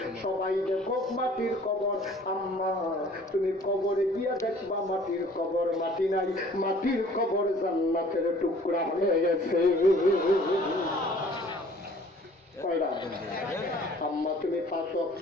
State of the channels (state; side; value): normal; both; correlation 0.53